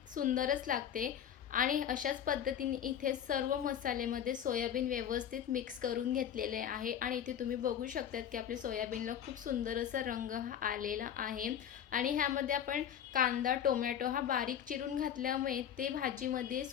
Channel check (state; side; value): quieter; right; 9.4 dB